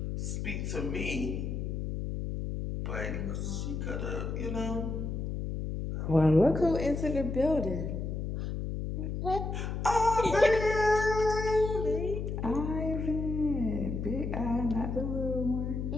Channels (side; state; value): left; noise; hum, 3 dB below the sound